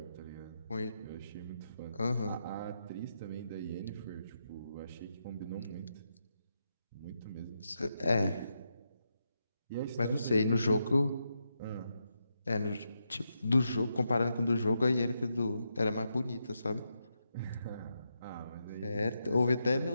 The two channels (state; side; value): inverted; both; correlation -0.84